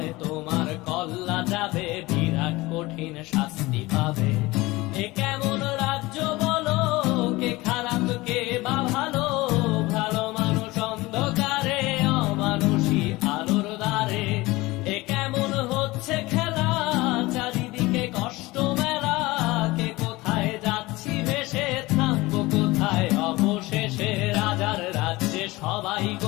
তোমার কল্লা যাবে, বিরাট কঠিন শাস্তি পাবে। এ কেমন রাজ্য বলো, কে খারাপ কে বা ভালো, ভালো মানুষ অন্ধকারে, অমানুষী আলোর দ্বারে। এ কেমন হচ্ছে খেলা, চারিদিকে কষ্ট মেলা, কে কোথায় যাচ্ছি ভেসে, থামবো কোথায় অবশেষে। রাজার রাজ্যে সবাই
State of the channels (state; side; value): quieter; right; 20.8 dB